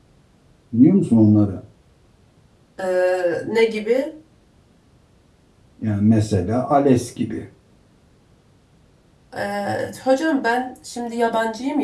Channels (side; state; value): both; identical; correlation 1.00